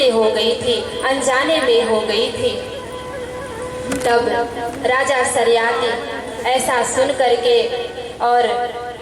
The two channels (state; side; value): identical; both; correlation 1.00